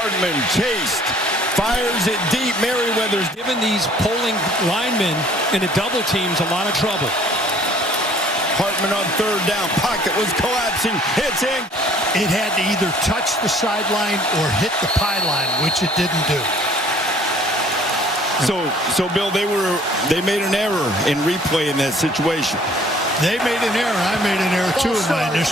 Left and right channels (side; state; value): both; normal; correlation 0.56